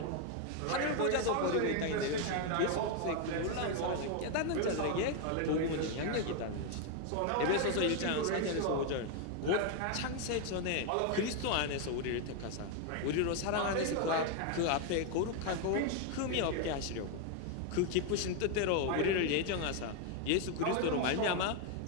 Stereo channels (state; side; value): different; both; correlation 0.01